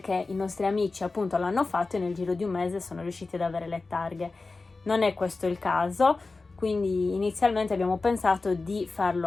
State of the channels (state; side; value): quieter; right; 3.7 dB